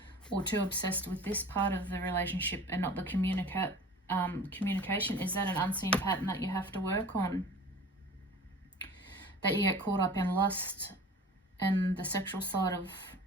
or too obsessed with this part of the relationship and not the communication. Is that an unseen pattern that you have to work on? That you get caught up in lust and the sexual side of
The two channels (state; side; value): normal; both; correlation 0.42